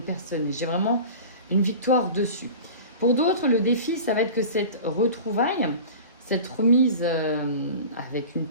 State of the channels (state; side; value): inverted; both; correlation -0.37